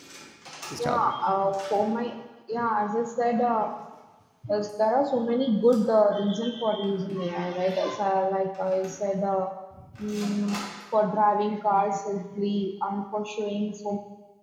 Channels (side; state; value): both; identical; correlation 1.00